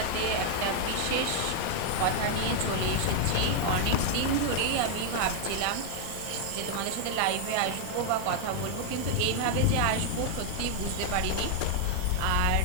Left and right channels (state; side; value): different; both; correlation 0.00